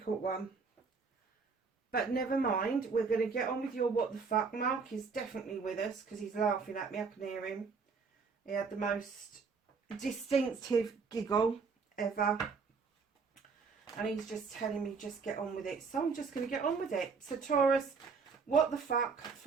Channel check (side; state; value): left; quieter; 5.1 dB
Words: one, but never mind, we're going to get on with your what the fuck. Mark is definitely with us because he's laughing at me. I can hear him. He had the most distinctive giggle ever, and he's just telling me just get on with it, so I'm just going to get on with it. So Taurus, what the fuck